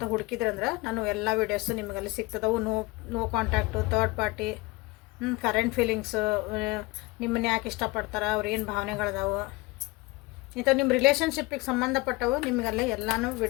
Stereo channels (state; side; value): quieter; right; 22.8 dB